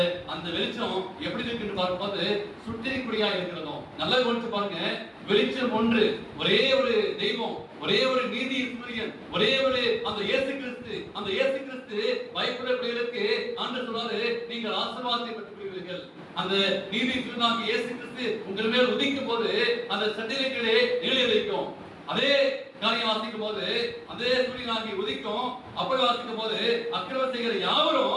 அந்த வெளிச்சம் எப்படி இருக்குன்னு பார்க்கும்போது சுட்டரிக்கூடியா இருக்கிறதும். நல்லா கவனிச்சு பாருங்க, வெளிச்சம் ஒன்று, ஒரே ஒரு தெய்வம், ஒரே ஒரு நீதி சூரியன், ஒரே ஒரு அந்த இயேசு கிறிஸ்து. அந்த இயேசு கிறிஸ்து பயப்பட பிள்ளைகளுக்கு ஆண்டவர் சொல்றாரு, நீங்கள் ஆசீர்வாதத்தை பெற்றுக்கொள்வீர்கள். அந்த நீதி சூரியனாகிய இயேசு கிறிஸ்து உங்கள் மேல் உதிக்கும் போது அந்த சட்டிலைகளே நிலை வைக்கும். அதே காரியம் வாசிக்கும் போது அதே சூரியனாகி உதிக்கும். அப்படி வாசிக்கும் போது அக்கிரமம் செய்கிற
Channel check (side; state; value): both; identical; correlation 1.00